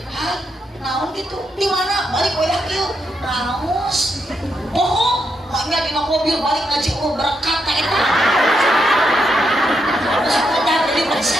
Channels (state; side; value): normal; both; correlation 0.81